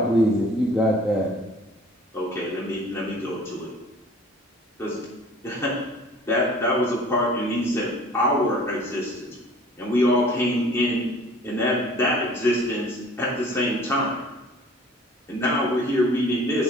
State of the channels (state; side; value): normal; both; correlation 0.49